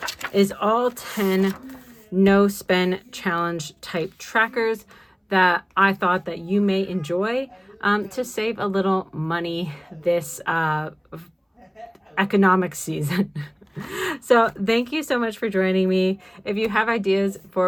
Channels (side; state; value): both; identical; correlation 1.00